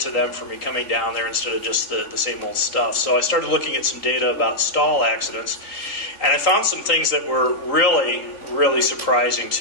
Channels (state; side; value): late; right; 3.8 ms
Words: to them for me coming down there instead of just the same old stuff. So I started looking at some data about stall accidents, and I found some things that were really, really surprising